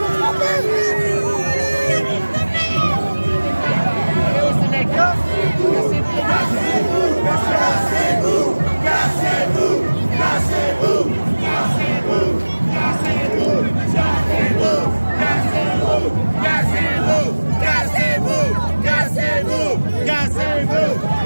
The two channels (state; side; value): inverted; both; correlation -1.00